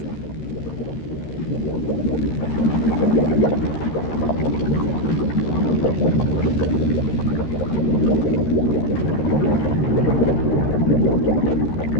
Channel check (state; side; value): late; right; 13 ms